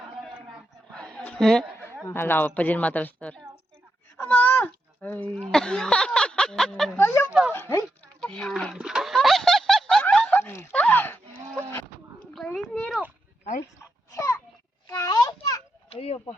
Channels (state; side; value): normal; both; correlation 0.84